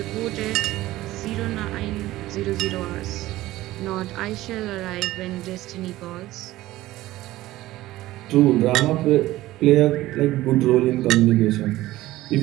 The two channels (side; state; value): left; quieter; 16.5 dB